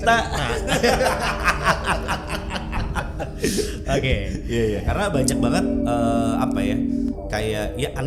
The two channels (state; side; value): identical; both; correlation 1.00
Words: Oke. Iya. Karena banyak banget kayak ya